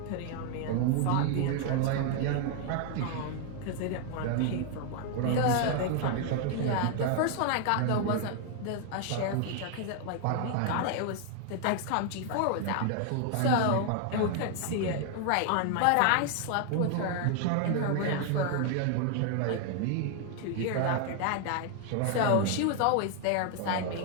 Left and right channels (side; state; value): both; different; correlation 0.00